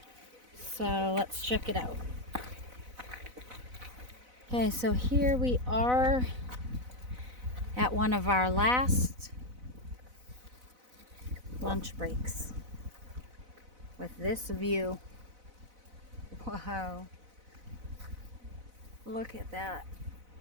so let's check it out. Okay, so here we are at one of our last lunch breaks with this view. Wow. Look at that.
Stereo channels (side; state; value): left; late; 4.0 ms